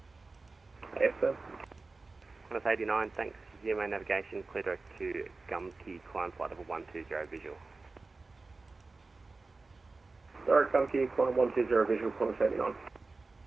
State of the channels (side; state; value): left; quieter; 3.7 dB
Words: Yes, sir. Qantas 89, thanks. GMA navigation, clear direct to Gumkey, climb flight level 120 visual. Direct Gumkey, climb 120 visual, Qantas 89.